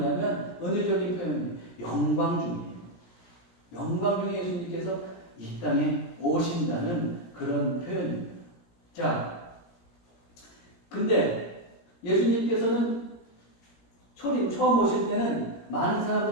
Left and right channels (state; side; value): late; right; 17 ms